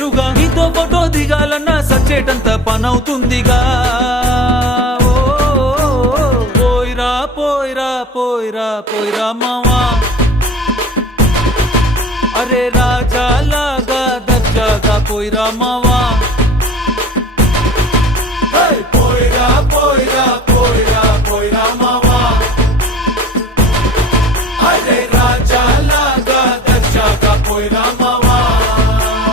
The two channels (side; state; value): both; normal; correlation 0.40